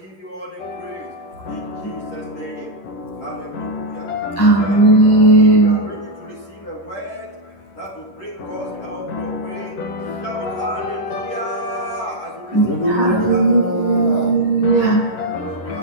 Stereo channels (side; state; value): right; late; 10 ms